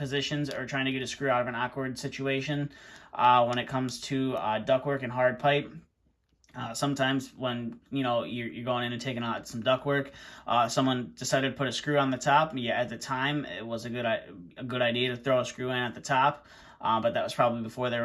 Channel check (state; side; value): identical; both; correlation 1.00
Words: or trying to get a screw out of an awkward situation when it comes to ductwork and hard pipe. Sometimes when you're going in and taking out some ductwork, someone decided to put a screw on the top. Yeah, at the time it was a good idea to throw a screw in at the top, but that was probably before there